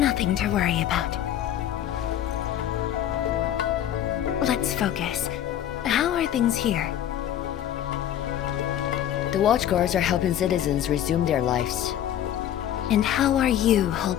to worry about. Let's focus. How are things here? The Watchguards are helping citizens resume their lives. And how are you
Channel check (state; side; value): quieter; right; 10.9 dB